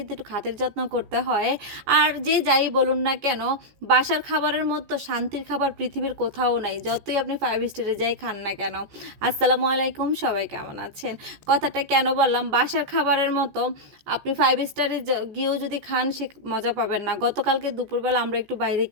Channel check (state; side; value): late; left; 15 ms